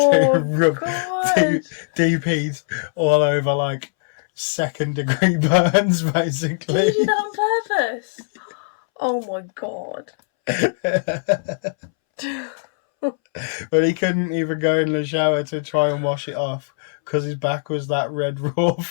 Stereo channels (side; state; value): right; silent; 64 dB below the other